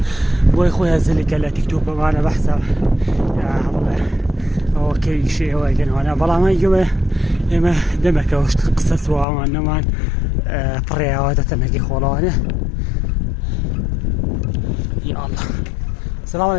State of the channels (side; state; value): right; drops out; at 9.2 s